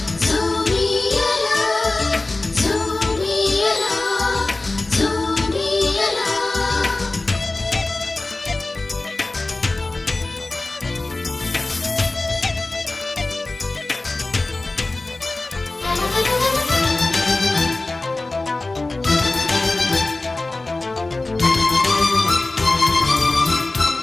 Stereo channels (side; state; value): right; quieter; 3.1 dB